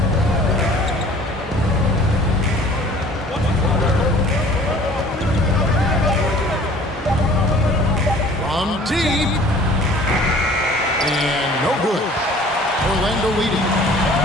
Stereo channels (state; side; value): normal; both; correlation 0.50